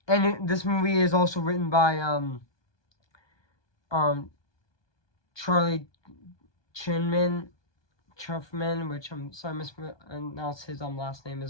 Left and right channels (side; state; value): right; late; 1.2 ms